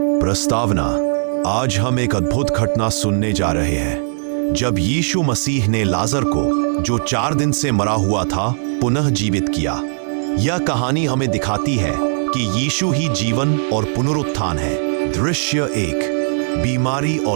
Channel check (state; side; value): silent; left; 67 dB below the other